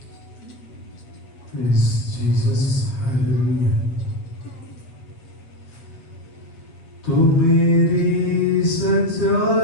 Praise Jesus, hallelujah. तू मेरी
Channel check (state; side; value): late; right; 7.5 ms